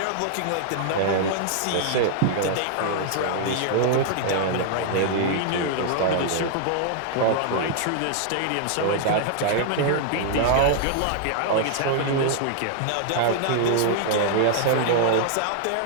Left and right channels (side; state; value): both; different; correlation -0.01